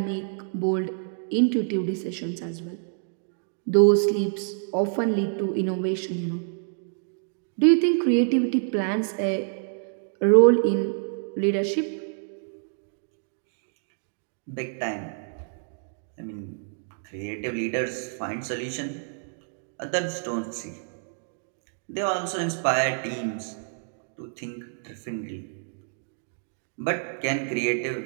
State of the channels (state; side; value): silent; left; digital silence